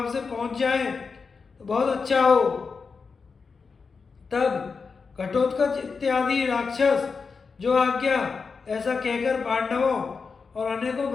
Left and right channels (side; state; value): right; quieter; 5.0 dB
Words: से पहुंच जाएं तो बहुत अच्छा हो। तब घटोत्कच इत्यादि राक्षस जो आज्ञा ऐसा कहकर पांडवों और अनेकों